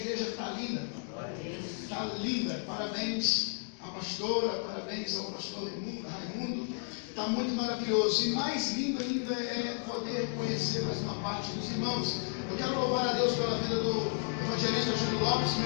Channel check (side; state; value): right; silent; 56 dB below the other